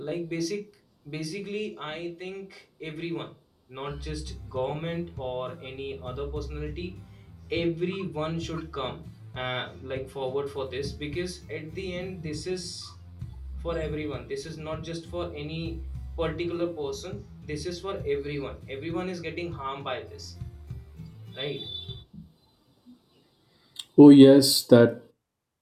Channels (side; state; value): both; identical; correlation 1.00